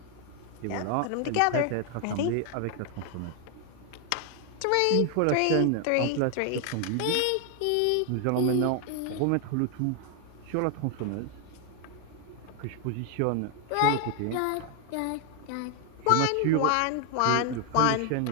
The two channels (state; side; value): different; both; correlation 0.00